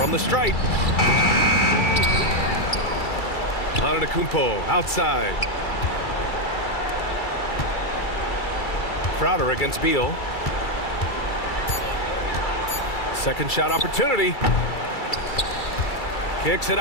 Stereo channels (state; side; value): late; right; 2.3 ms